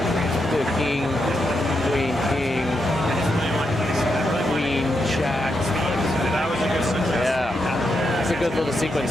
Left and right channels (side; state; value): both; normal; correlation 0.83